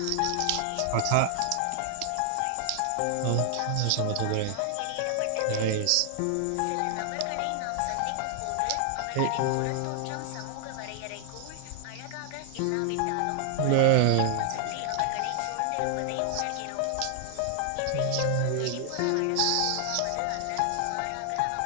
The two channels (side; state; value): both; different; correlation 0.00